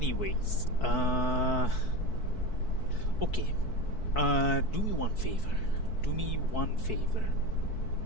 okay. Do me one favor. Do me one favor.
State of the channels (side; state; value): right; late; 4.6 ms